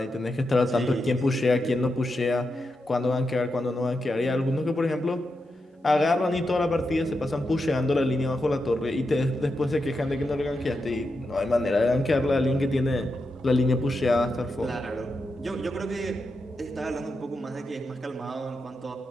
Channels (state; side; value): normal; both; correlation 0.87